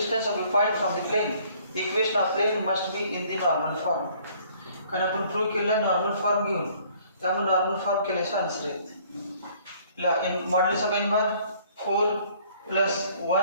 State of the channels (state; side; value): inverted; both; correlation -0.59